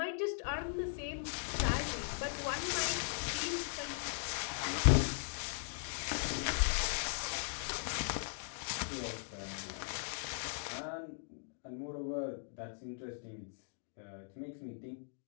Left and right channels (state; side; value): silent; right; digital silence